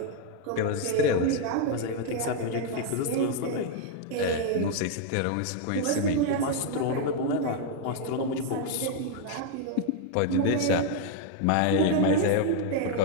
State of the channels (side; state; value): both; different; correlation 0.00